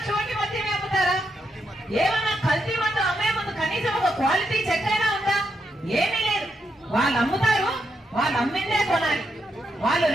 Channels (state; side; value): normal; both; correlation 0.81